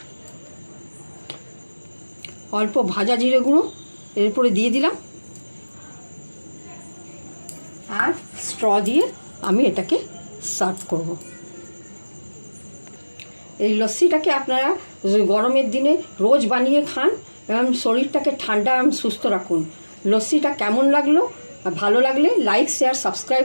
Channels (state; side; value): inverted; both; correlation -1.00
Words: অল্প ভাজা জিরে গুঁড়ো এর উপরে দিয়ে দিলাম। আর স্ট্র দিয়ে আমি এটাকে সার্ভ করব। এই লস্যিটাকে আপনারা গরমের দিনে রোজ বানিয়ে খান এবং শরীরটাকে ঠান্ডা এবং সুস্থ রাখুন। লস্যিটা কেমন লাগলো, ভালো লাগলে লাইক, শেয়ার,